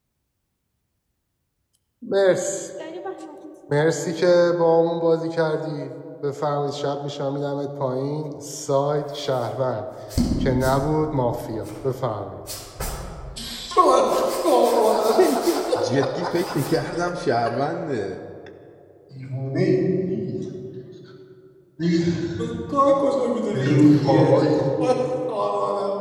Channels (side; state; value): both; identical; correlation 1.00